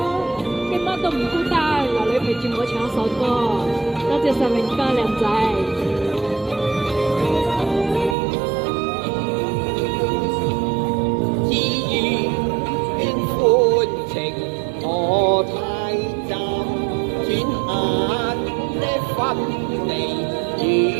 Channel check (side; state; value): left; drops out; at 8.2 s